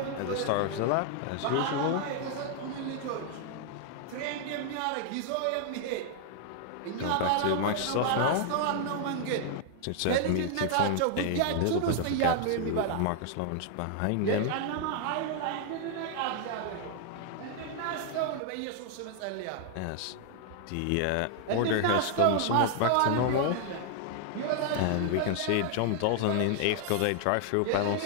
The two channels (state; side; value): different; both; correlation 0.00